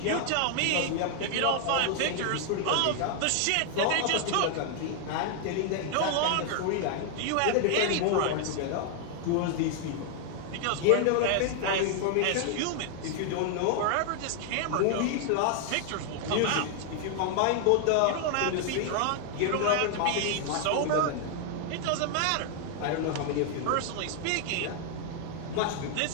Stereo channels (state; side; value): different; both; correlation 0.00